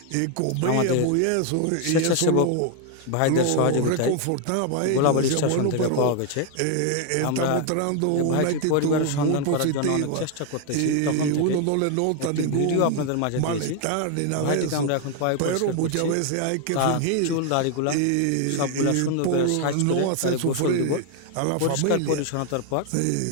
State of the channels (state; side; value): different; both; correlation 0.01